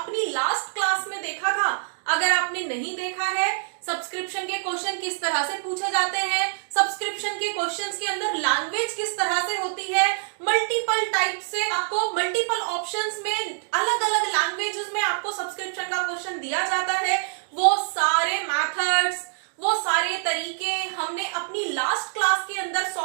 अपनी लास्ट क्लास में देखा था। अगर आपने नहीं देखा है सब्सक्रिप्शन के क्वेश्चन किस तरह से पूछे जाते हैं, सब्सक्रिप्शन के क्वेश्चंस के अंदर लैंग्वेज किस तरह से होती है, मल्टीपल टाइप से आपको मल्टीपल ऑप्शंस में अलग अलग लैंग्वेजेस में आपको सब्सक्रिप्शन का क्वेश्चन दिया जाता है, वो सारे मेथड्स, वो सारे तरीके हमने अपनी लास्ट क्लास के अंदर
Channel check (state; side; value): silent; left; digital silence